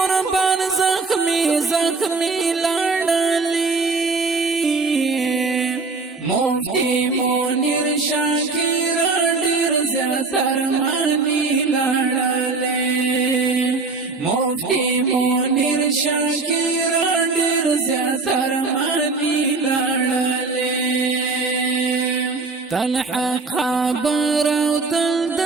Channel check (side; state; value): left; quieter; 4.0 dB